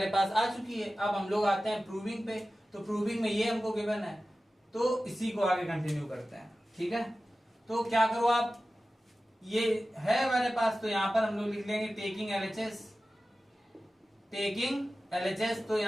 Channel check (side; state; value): both; normal; correlation 0.95